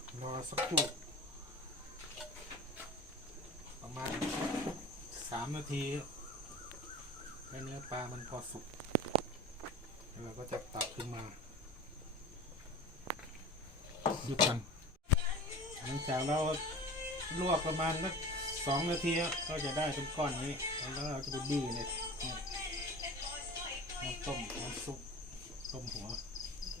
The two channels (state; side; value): normal; both; correlation 0.36